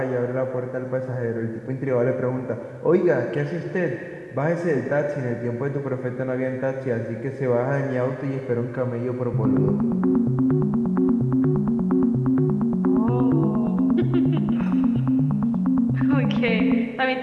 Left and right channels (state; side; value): identical; both; correlation 1.00